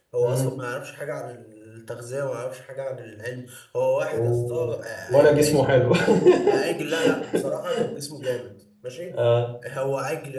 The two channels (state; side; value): identical; both; correlation 1.00